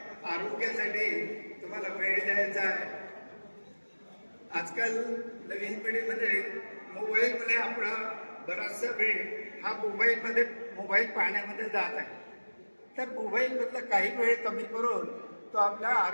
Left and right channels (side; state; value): both; inverted; correlation -1.00